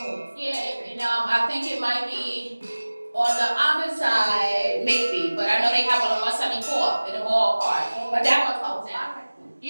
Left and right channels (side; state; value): both; inverted; correlation -1.00